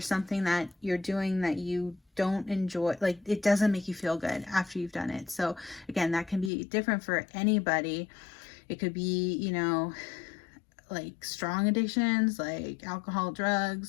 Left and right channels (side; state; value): right; drops out; at 6.5 s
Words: something that you're doing that you don't enjoy, like it doesn't make you feel good after you've done it. So again, that can be different for anybody. It could be, you know, like strong addictions like alcohol,